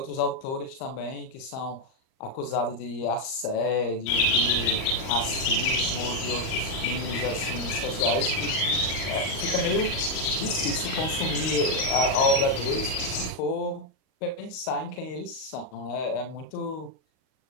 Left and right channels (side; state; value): right; late; 38 ms